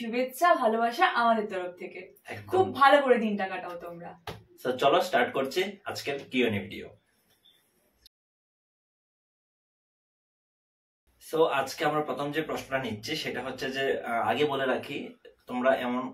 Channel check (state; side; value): identical; both; correlation 1.00